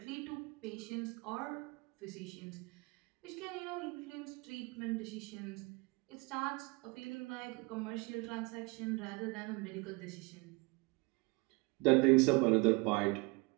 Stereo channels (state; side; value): quieter; left; 27.7 dB